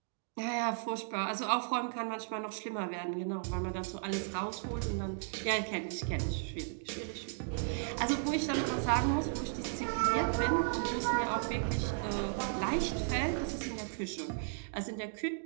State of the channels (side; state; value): left; silent; digital silence